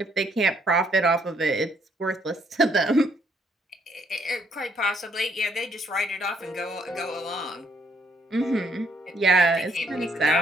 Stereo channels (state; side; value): normal; both; correlation 0.69